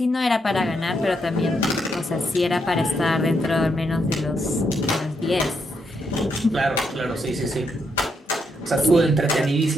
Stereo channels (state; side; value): normal; both; correlation 0.79